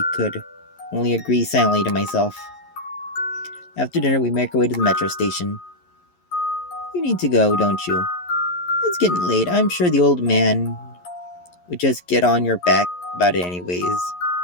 could only agree silently to myself. After dinner, we make our way to the metro station. You need to go, don't you? It's getting late. I'm sure the old man would just get on your back about it anyways.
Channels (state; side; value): late; right; 11 ms